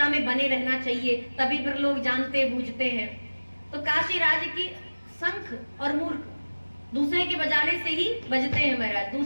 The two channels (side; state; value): both; inverted; correlation -1.00